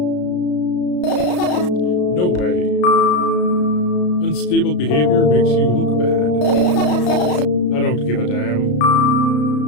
No way. Unstable behavior makes you look bad. I don't give a damn.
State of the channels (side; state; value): right; late; 33 ms